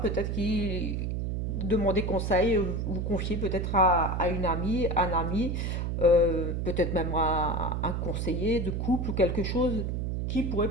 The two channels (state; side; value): noise; right; hum, 1 dB below the sound